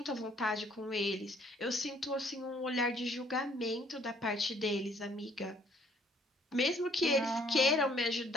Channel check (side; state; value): both; normal; correlation 0.62